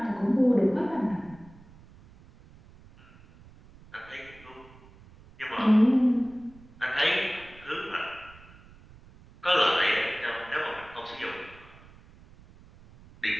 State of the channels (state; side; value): noise; right; rumble, 23 dB below the sound